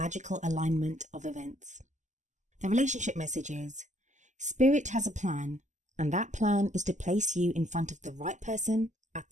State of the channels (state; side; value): late; left; 0.34 ms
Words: alignment of events. The relationship message is, Spirit has a plan, and that plan is to place you in front of the right person at